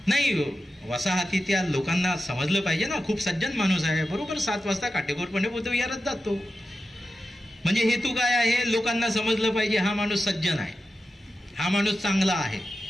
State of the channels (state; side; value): normal; both; correlation 0.91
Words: नाही, वसाहतीतल्या लोकांना समजलं पाहिजे ना, खूप सज्जन माणूस आहे, बरोबर 7 वाजता काटेकोरपणे बुद्ध विहारात जातो. म्हणजे हेतू काय आहे? लोकांना समजलं पाहिजे हा माणूस सज्जन आहे, हा माणूस चांगला आहे,